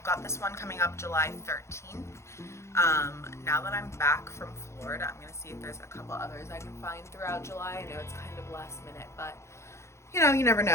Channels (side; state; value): right; late; 0.13 ms